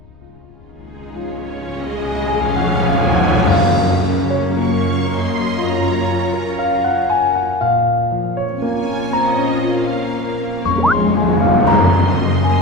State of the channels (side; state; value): left; noise; rumble, 26 dB below the sound